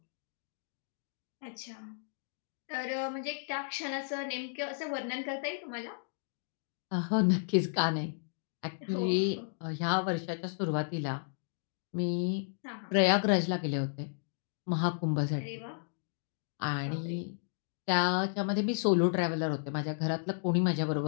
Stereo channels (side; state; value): right; silent; digital silence